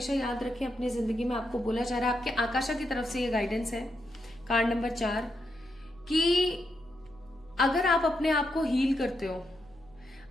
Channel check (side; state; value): left; noise; hum, 29 dB below the sound